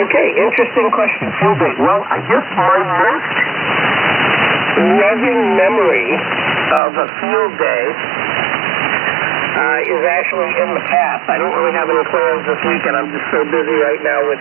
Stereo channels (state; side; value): drops out; left; at 6.8 s